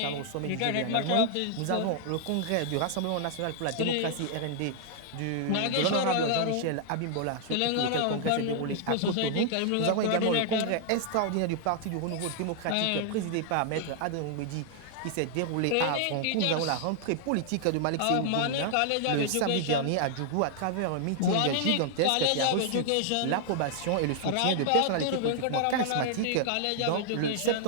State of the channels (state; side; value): different; both; correlation 0.00